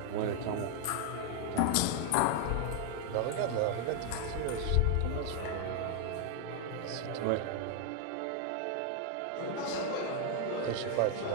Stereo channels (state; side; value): different; both; correlation 0.00